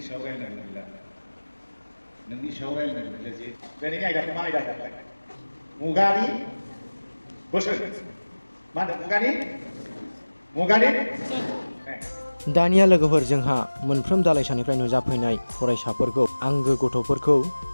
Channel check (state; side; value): inverted; both; correlation -1.00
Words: सायाव रायलायनांगौ गैला। नोंनि सायाव रायलायनांगौ गैला जे दिनैनि आयदाखौ मा आयदा होनोमोनलाय? मुगानि बोसोन। मा होनदों? मुगानि दानिया लोगोफोर जोंहा मोनफ्रोम दालाइसानिफ्राय नुजाफैनाय फरायसाफोरखौ, आंगो गथ'फोरखौ